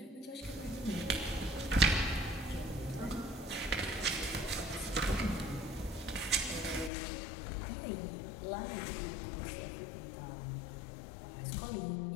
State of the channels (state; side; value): drops out; right; at 6.9 s